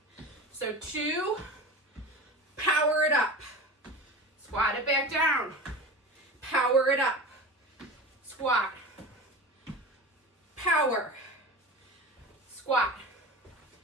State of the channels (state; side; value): normal; both; correlation 0.33